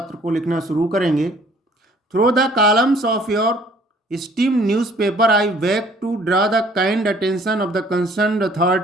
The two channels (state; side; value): normal; both; correlation 0.57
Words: को लिखना शुरू करेंगे। Through the columns of your esteemed newspaper, I beg to draw the kind attention of the concerned